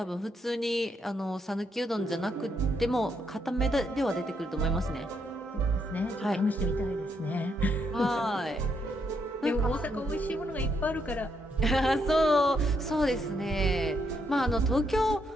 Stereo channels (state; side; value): normal; both; correlation 0.76